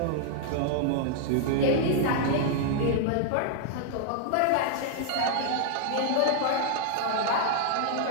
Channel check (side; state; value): both; different; correlation -0.01